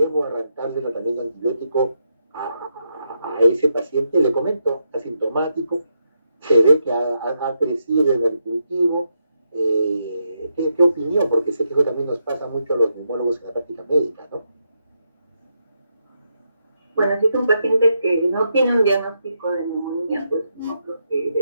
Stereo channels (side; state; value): both; inverted; correlation -0.82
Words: arrancarle el tratamiento antibiótico a ese paciente? Le comento, asintomático, se ve que ha crecido en el cultivo. ¿Qué opinión? Porque sé que eso también nos pasa mucho a los neumólogos en la práctica médica, ¿no? Bueno, si es un paciente que no tiene un diagnóstico de neumonía, pues no creo que